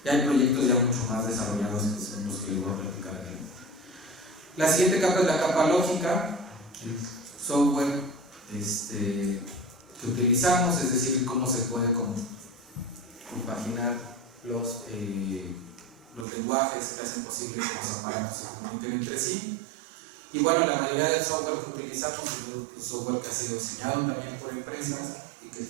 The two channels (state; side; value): drops out; left; at 16.2 s